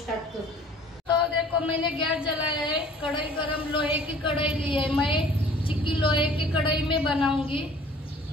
करते हैं। तो देखो मैंने गैस जलाया है, कढ़ाई गरम, लोहे की कढ़ाई ली है। मैं चिक्की लोहे की कढ़ाई में बनाऊंगी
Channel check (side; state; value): both; normal; correlation 0.51